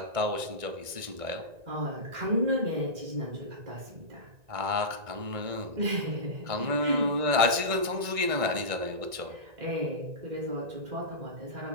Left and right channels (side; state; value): left; late; 1.9 ms